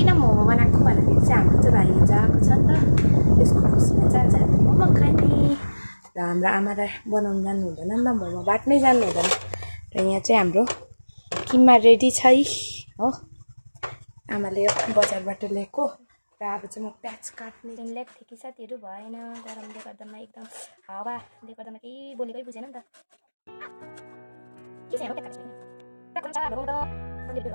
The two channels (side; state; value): both; inverted; correlation -1.00